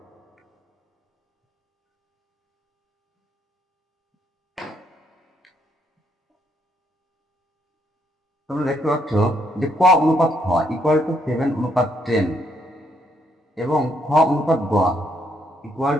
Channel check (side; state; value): both; normal; correlation 0.73